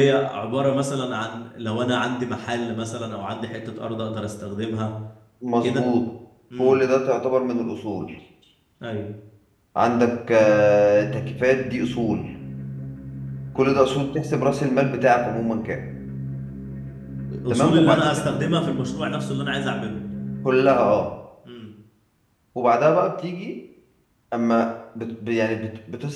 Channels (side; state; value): both; identical; correlation 1.00